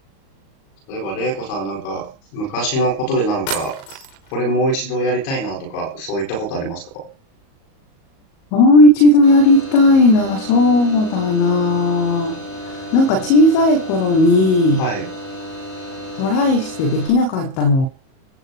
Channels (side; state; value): right; late; 38 ms